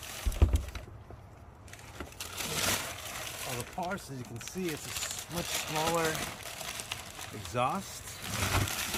all the parts, as you can see, it's a much smaller exhaust,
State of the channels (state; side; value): identical; both; correlation 1.00